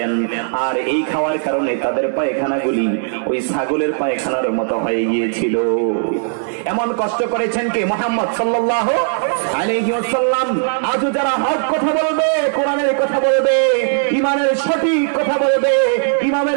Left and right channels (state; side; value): silent; left; 68 dB below the other